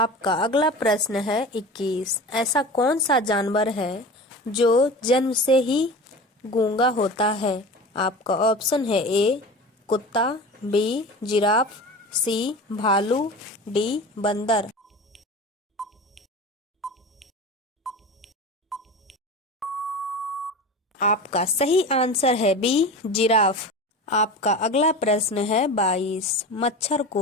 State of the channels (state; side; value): normal; both; correlation 0.32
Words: अगला प्रश्न है 21। ऐसा कौन सा जानवर है जो जन्म से ही गूंगा होता है? आपका ऑप्शन है ए कुत्ता, बी जिराफ, सी भालू, डी बंदर। आपका सही आंसर है बी जिराफ। आपका अगला प्रश्न है 22। मच्छर